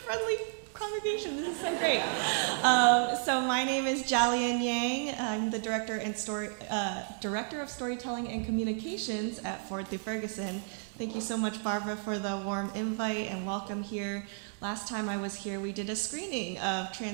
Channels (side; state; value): left; silent; 56 dB below the other